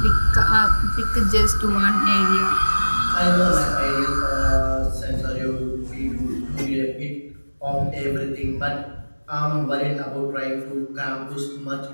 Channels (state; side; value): inverted; both; correlation -1.00